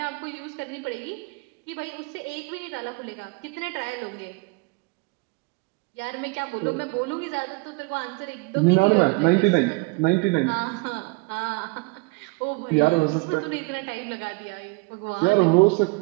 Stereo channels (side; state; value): left; quieter; 29.1 dB